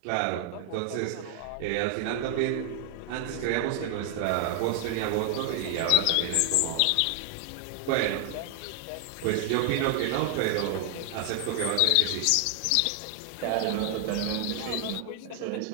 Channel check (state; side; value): different; both; correlation 0.00